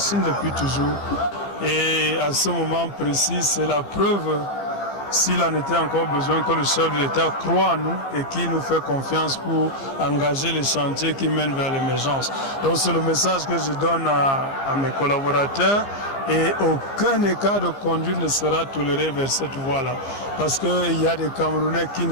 depuis toujours. Et à ce moment précis, c'est la preuve, s'il en était encore besoin, que le chef de l'État croit en nous et qui nous fait confiance pour engager les chantiers qui mènent vers l'émergence. Donc c'est le message que je donne à mes collaborateurs. Et aucun écart de conduite ne sera toléré vers cette voie-là. Parce qu'il y a des Camerounais qui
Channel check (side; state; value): right; late; 15 ms